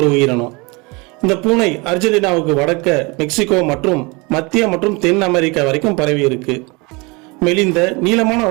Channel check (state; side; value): quieter; left; 27.3 dB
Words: உயிரினம். இந்த பூனை அர்ஜென்டினாவுக்கு வடக்க மெக்சிகோ மற்றும் மத்திய மற்றும் தென் அமெரிக்கா வரைக்கும் பரவி இருக்கு. மெலிந்த நீளமான